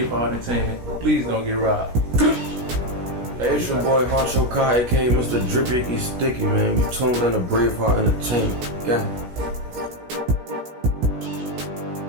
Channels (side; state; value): left; late; 17 ms